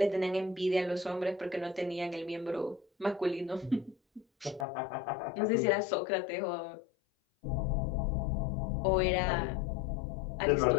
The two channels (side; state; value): right; drops out; at 4.7 s